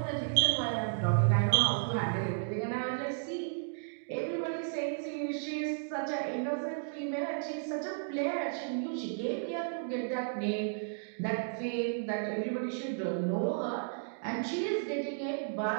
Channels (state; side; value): silent; left; digital silence